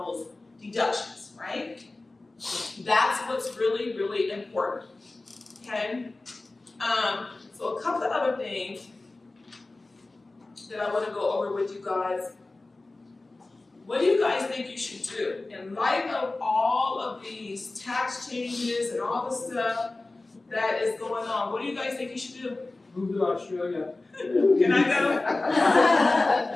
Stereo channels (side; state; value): right; quieter; 3.1 dB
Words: deductions, right? That's what's really, really important, okay? So a couple of other things that I wanna go over with you guys. What do you guys think you should do? In light of all of these tax changes and all the stuff that is going on, what do you guys think you should do? Move to Australia. Can I go?